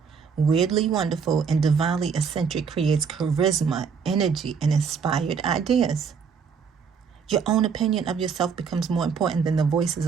weirdly wonderful, and divinely eccentric creates charisma, energy, and inspired ideas. Your own opinion of yourself becomes more important than the voices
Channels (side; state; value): left; quieter; 6.1 dB